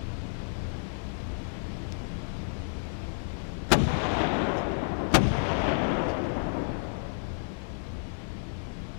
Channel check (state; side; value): silent; right; digital silence